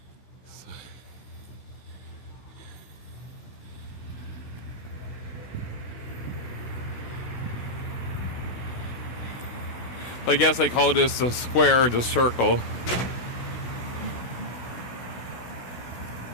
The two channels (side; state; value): right; late; 16 ms